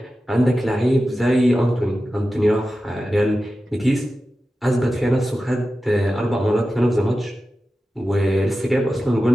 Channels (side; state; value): both; normal; correlation 0.93